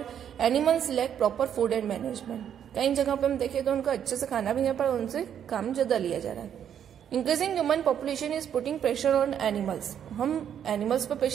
animals lack proper food and management. कई जगह पे हम देखें तो उनको अच्छे से खाना भी नहीं पर उनसे काम ज्यादा लिया जा रहा है. Increasing human population is putting pressure on animals. हम एनिमल्स पर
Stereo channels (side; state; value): left; quieter; 9.1 dB